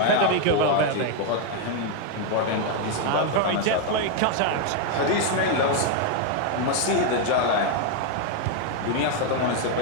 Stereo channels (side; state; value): both; different; correlation 0.01